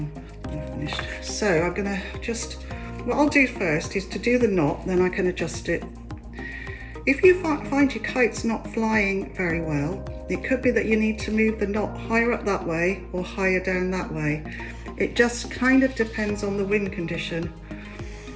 when I'm finished. So I'm going to just, what I'll do first is to do the knot, then I can adjust it. If you find your kite's not flying very well, it could be that you need to move the knot higher up that way or higher down that way. It just kind of depends on the wind condition.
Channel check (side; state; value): both; identical; correlation 1.00